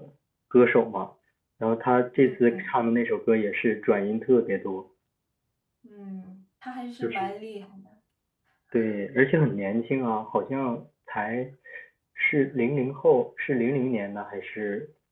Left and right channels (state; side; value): identical; both; correlation 1.00